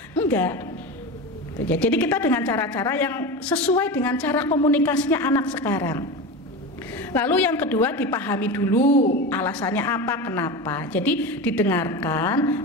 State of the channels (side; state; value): both; normal; correlation 0.25